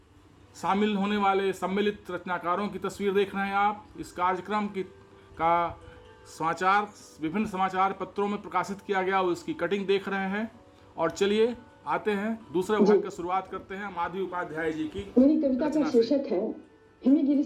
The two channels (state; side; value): identical; both; correlation 1.00